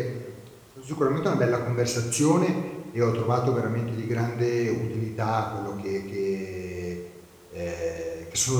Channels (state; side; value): identical; both; correlation 1.00